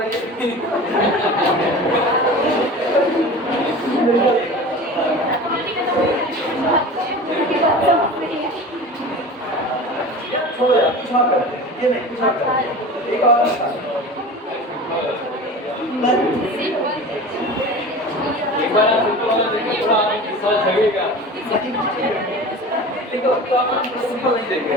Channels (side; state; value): both; normal; correlation 0.35